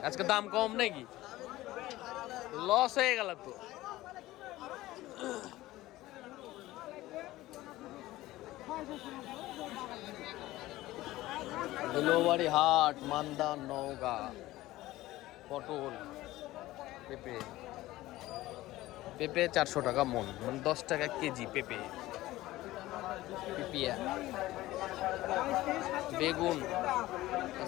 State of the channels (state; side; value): quieter; right; 17.0 dB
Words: আজকে দাম কম নাকি? লস হয়ে গেল তো। ডেলিভারি হাট, মান্দা, নওগাঁ। পটল, পেঁপে 400 টাকা মন, মানে 10 টাকা কেজি পেঁপে। বেগুন,